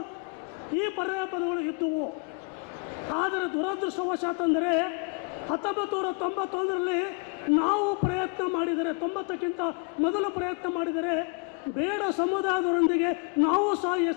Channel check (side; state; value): right; quieter; 33.2 dB